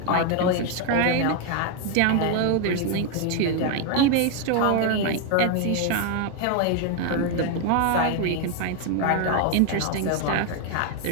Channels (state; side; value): different; both; correlation 0.01